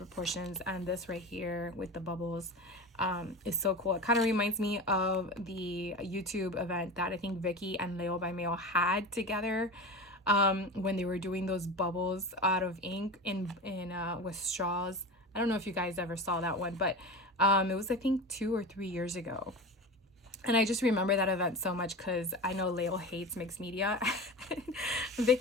And this right here with the bubbles is so cool. It kind of reminds me of the YouTube event that I think Vicki and Leo by Mail had together, when they were doing those bubbles out of ink in with straws. I don't know if you guys ever saw that one, but it was, I think, 2 or 3 years ago. And I just remember that event so much because I know Leo hates mixed media.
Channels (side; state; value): both; normal; correlation 0.28